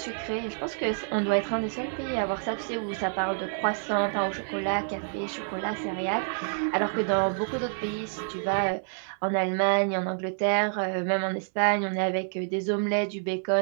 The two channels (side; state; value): left; silent; 59 dB below the other